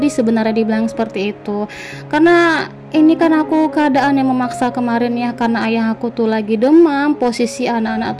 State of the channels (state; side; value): identical; both; correlation 1.00